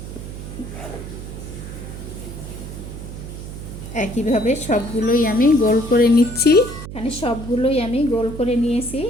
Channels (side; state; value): right; noise; hum, 10 dB below the sound